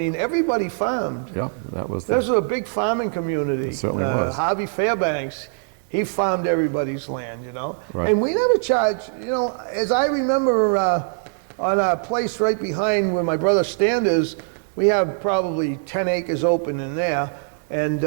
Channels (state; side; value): silent; left; 64 dB below the other